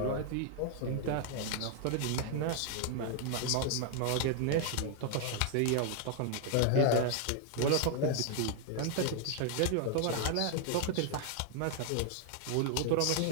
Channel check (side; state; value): both; different; correlation 0.00